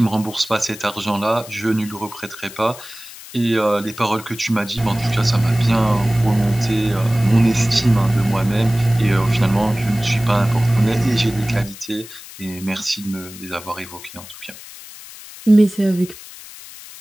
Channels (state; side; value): noise; left; hiss, 16 dB below the sound